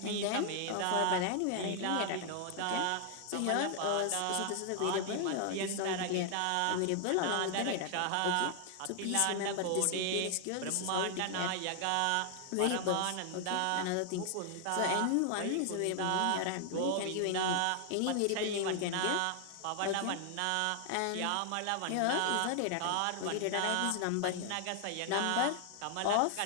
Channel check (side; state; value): both; different; correlation 0.00